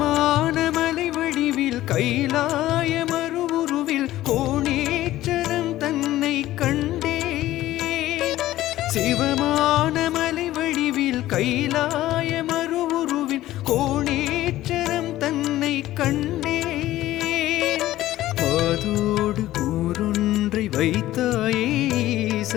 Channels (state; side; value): quieter; right; 15.0 dB